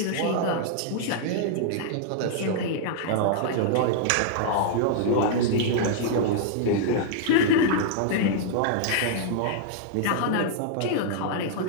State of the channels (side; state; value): both; different; correlation -0.01